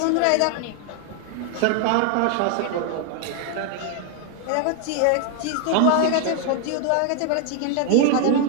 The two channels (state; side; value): different; both; correlation 0.00